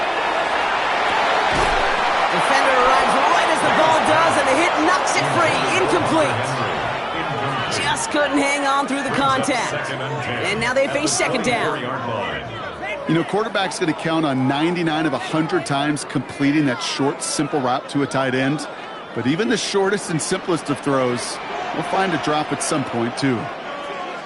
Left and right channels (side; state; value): both; identical; correlation 1.00